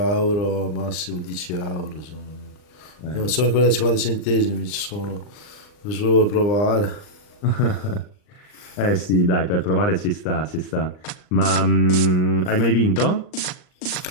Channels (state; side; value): late; right; 39 ms